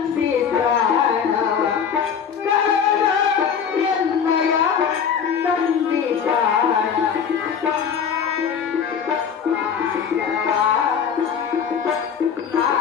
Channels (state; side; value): quieter; right; 7.2 dB